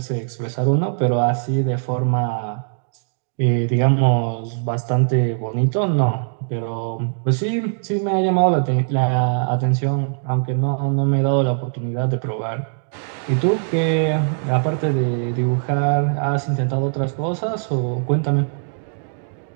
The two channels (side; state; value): left; silent; digital silence